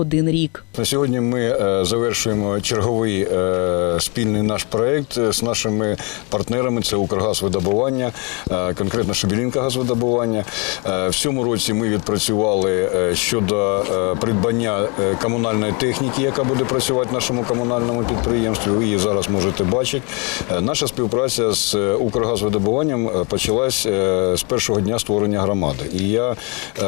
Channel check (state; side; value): quieter; right; 32.2 dB